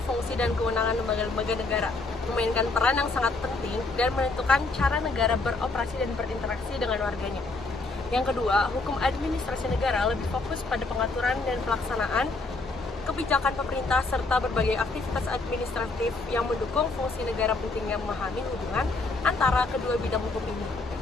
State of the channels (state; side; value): quieter; right; 3.5 dB